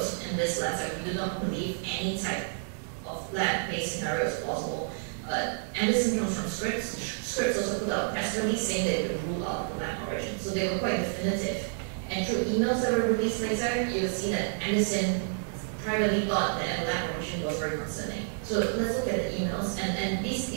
in this letter, we do not believe any type of lab-based scenario is plausible. Anderson comes from Scripps. Scripps also put out a press release saying they could rule out the lab origin. So they were quite definitive. And through emails that were released later, you will see that Anderson privately thought that a lab origin was very concerning. So let's look at the emails. And these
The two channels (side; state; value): left; silent; digital silence